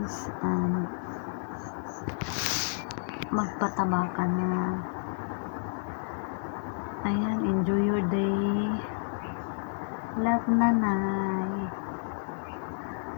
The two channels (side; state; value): right; silent; digital silence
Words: And magpataba ka na. Ayan, enjoy your day. Love, nanay.